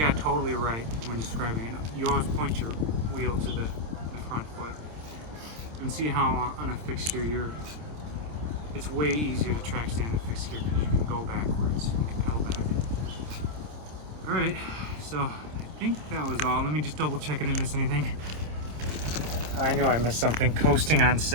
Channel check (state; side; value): late; left; 26 ms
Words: got totally right when describing it. You always point your wheel to the front foot. And see how on a fixed gear it's way easier to track stand a fixed gear because you can go backwards. You can pedal back. Alright, so I think that was all. Let me just double check I didn't miss anything. I know I missed something. Coasting on